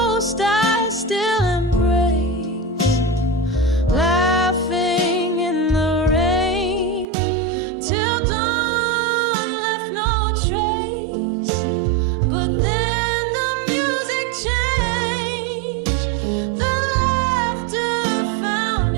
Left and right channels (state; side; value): drops out; left; at 7.1 s